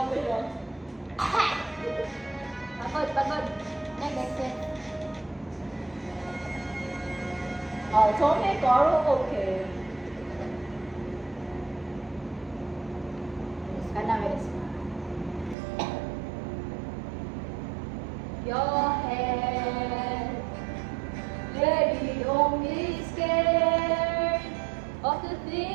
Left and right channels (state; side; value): drops out; left; at 15.6 s